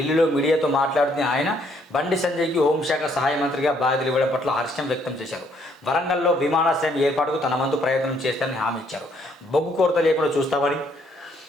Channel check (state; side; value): normal; both; correlation 0.68